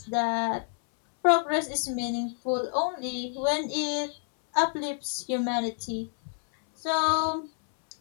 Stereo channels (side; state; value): right; silent; 59 dB below the other